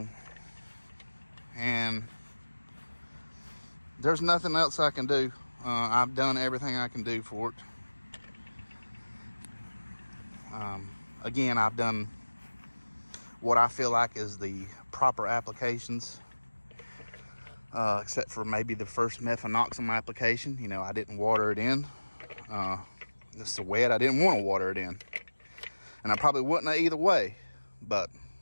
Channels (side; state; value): both; inverted; correlation -1.00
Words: And there's nothing else I can do. I've done everything I can do for it. Again, I've done what I feel like is the proper applications, except for maybe the first methanoxam application. You know, I didn't water it in. It's so wet, I didn't want to water it in. And I probably wouldn't have either way. But